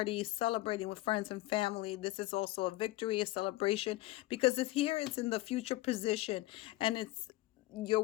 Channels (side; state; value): right; quieter; 17.7 dB